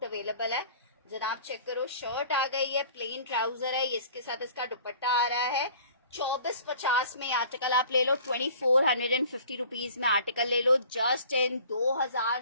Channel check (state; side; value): inverted; both; correlation -0.48